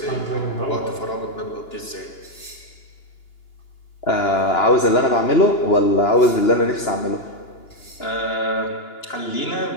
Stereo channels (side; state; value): right; late; 2.9 ms